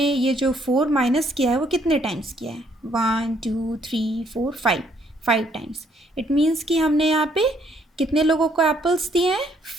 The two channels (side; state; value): both; normal; correlation 0.68